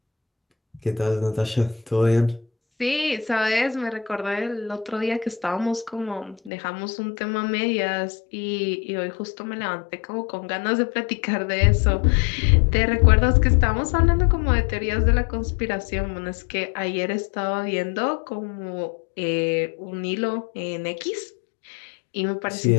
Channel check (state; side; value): drops out; right; at 6.5 s